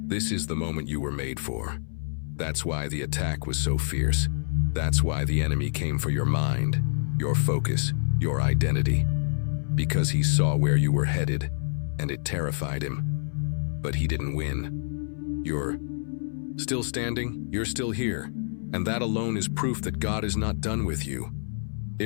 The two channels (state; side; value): silent; right; 60 dB below the other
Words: This is the moment you were made for. That's why the attack was so fierce. That's why the enemy came for your mind, your focus, your identity. Because he saw where you were headed, and it terrified him. But he didn't win. You're still standing, you're still here, and that alone is proof that God is not done with you.